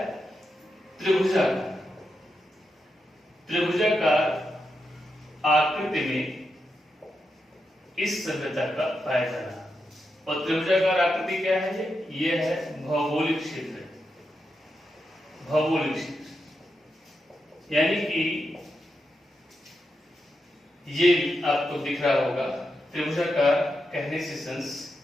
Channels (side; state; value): both; normal; correlation 0.86